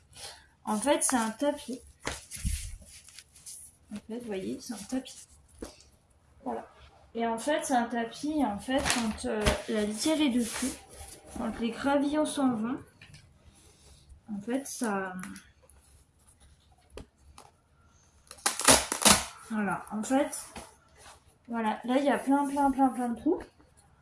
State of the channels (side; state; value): both; identical; correlation 1.00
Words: En fait, c'est un tapis. En fait, vous voyez, c'est un tapis. Voilà. Et en fait, c'est un tapis, en fait, quand la litière est dessus, quand les gravillons s'en vont, en fait, ça... Voilà, en fait, voilà, là, il y a plein de trous.